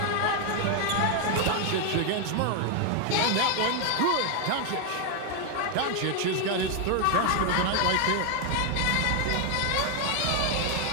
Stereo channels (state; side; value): different; both; correlation 0.01